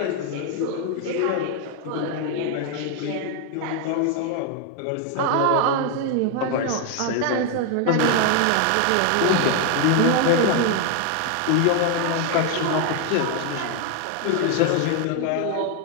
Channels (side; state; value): both; different; correlation 0.01